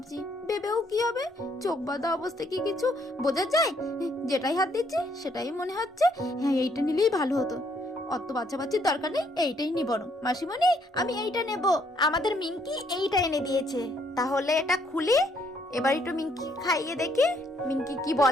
ভেবেও কি হবে, চোখ বাঁধা অবস্থায় কি কিছু বোঝা যায়? যেটাই হাত দিচ্ছি সেটাই মনে হচ্ছে হ্যাঁ এইটা নিলেই ভালো হতো, অত বাচ্চাবাচ্চির দরকার নেই, এইটাই নি বরং। মাসিমণি, আমি এইটা নেব। আমাদের মিঙ্কি এইটা এনে দিয়েছে, তাহলে এটা খুলি, এবার একটু মিঙ্কি খাইয়ে দেখি মিঙ্কি কি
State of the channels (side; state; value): both; normal; correlation 0.69